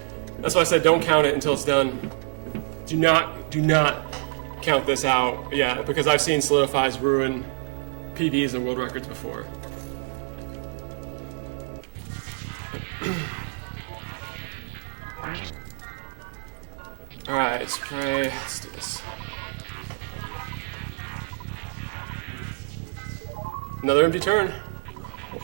That's why I said don't count it until it's done. Do not count this out. Yeah, because I've seen solidifies ruin PBs and world records before. Alright, spray. Let's do this. Another empty turn.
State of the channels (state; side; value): silent; left; 60 dB below the other